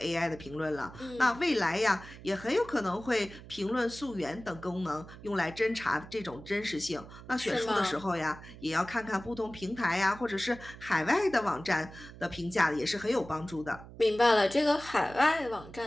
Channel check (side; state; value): right; noise; hum, 17 dB below the sound